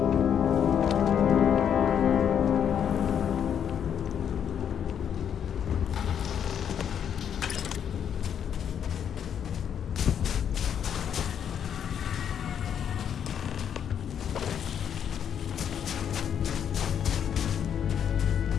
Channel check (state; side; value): quieter; right; 8.6 dB